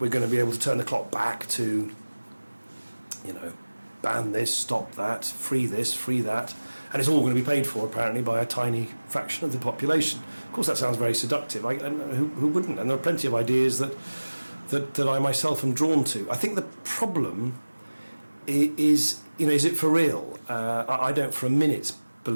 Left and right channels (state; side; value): inverted; both; correlation -1.00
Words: we're going to be able to turn the clock back to, ban this, stop that, free this, free that, and it's all going to be paid for apparently by a tiny fraction of the population. Of course, that sounds very seductive. And who wouldn't? And there are plenty of ideas that I myself am drawn to. I think the problem is it for real? I don't for a minute